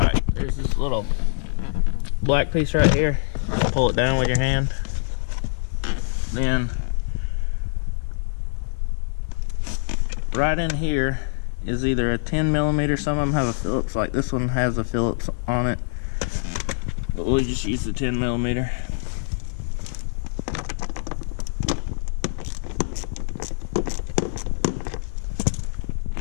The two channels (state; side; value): silent; right; 62 dB below the other